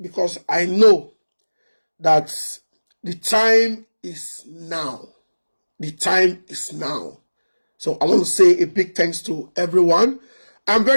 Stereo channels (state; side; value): inverted; both; correlation -1.00